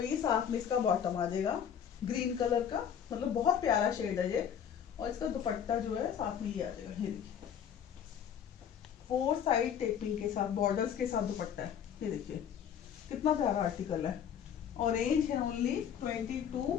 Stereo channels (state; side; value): quieter; right; 8.5 dB